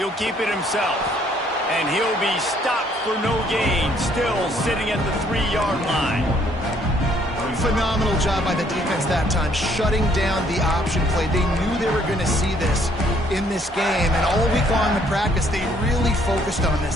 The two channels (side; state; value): both; normal; correlation 0.65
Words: keep it himself. And he'll be stopped for no gain, still sitting at the 3-yard line. Phenomenal job by the defense that time, shutting down the option play. They knew they were going to see this in this game, and all week long in practice, they really focused on